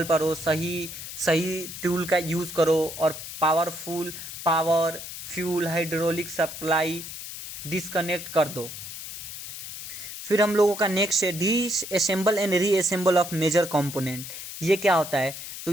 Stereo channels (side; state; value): left; noise; hiss, 10 dB below the sound